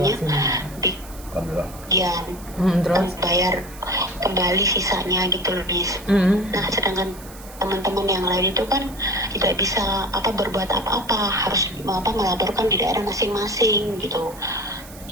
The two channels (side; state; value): right; noise; hiss, 18 dB below the sound